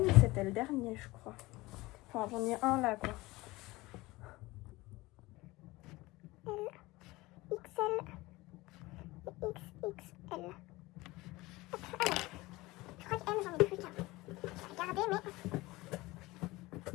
c'était le dernier je crois. Enfin j'en ai un là quoi. L, XL et XXL. Alors, je crois que M j'en ai plus qu'un. Je vais regarder mais...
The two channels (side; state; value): right; quieter; 20.5 dB